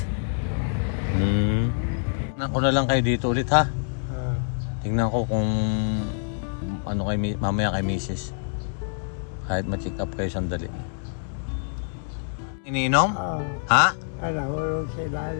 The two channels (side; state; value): right; silent; 61 dB below the other